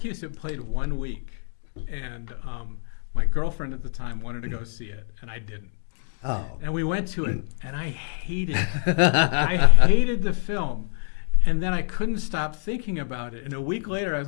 it played 1 week, and my girlfriend at the time wanted to go see it, and I didn't. Oh. And we went to it, and I hated it. I hated the film, and then I couldn't stop thinking about it. And a week later, I was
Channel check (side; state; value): right; silent; digital silence